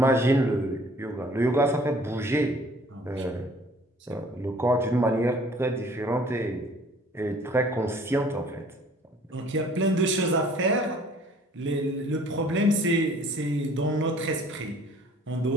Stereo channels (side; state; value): both; normal; correlation 0.54